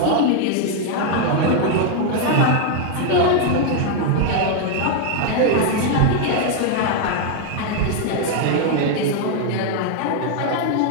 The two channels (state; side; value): different; both; correlation 0.00